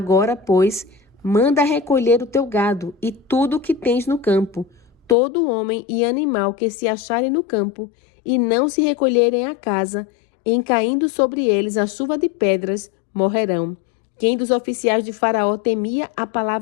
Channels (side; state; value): right; drops out; at 5.2 s